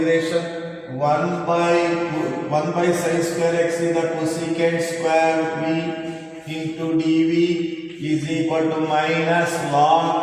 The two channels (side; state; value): both; identical; correlation 1.00